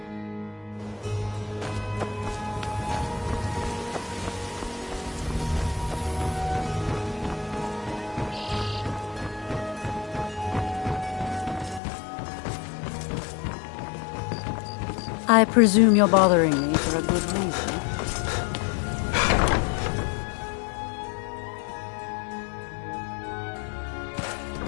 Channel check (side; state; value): right; drops out; at 11.8 s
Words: I presume you're bothering me for a good reason.